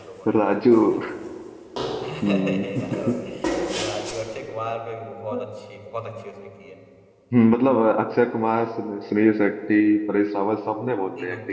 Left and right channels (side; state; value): both; identical; correlation 1.00